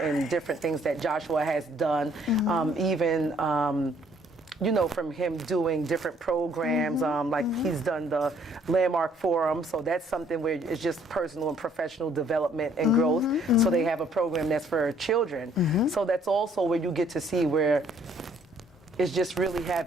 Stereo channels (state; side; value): normal; both; correlation 0.63